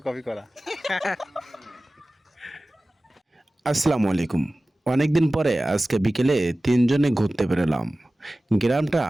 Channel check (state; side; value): normal; both; correlation 0.97